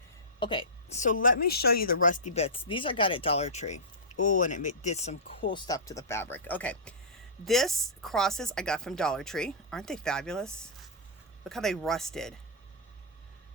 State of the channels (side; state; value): both; normal; correlation -0.17